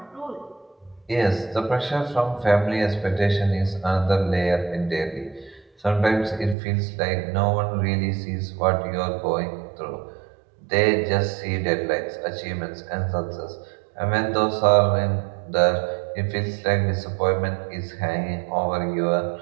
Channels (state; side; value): drops out; left; at 6.6 s